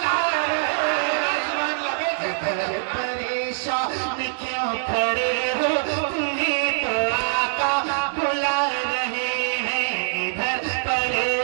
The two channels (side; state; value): left; silent; 63 dB below the other